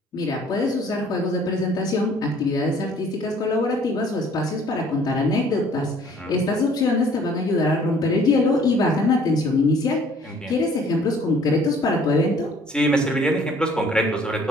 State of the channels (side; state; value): both; normal; correlation 0.57